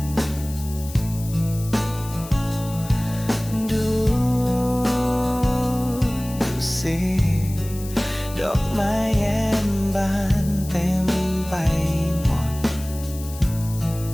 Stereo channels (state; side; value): noise; left; hiss, 15 dB below the sound